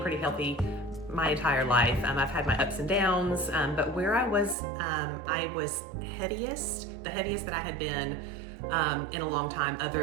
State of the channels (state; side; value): drops out; left; at 4.5 s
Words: pretty healthy my entire life. I've had my ups and downs, but where I was heaviest, the heaviest that I had been in a long time